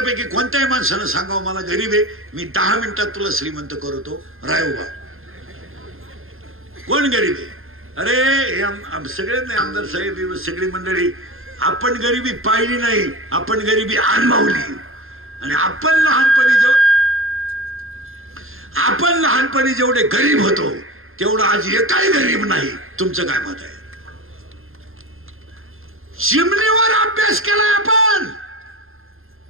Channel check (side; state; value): left; late; 0.60 ms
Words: कोणत्याही माणसानं सांगावं मला गरीब आहे, मी 10 मिनिटात तुला श्रीमंत करतो, राय उभा. कोण गरीब आहे? अरे सगळेच नाही, आमदार साहेब सगळी मंडळी. आपण गरिबी पाहिली नाही, आपण गरिबी अनुभवली. आणि आपण लहानपणी जेवढे गरीब होतो तेवढं आज एकही गरीब नाही. तुमचं काय मत आहे? चिमणीवर अभ्यास केला आपण.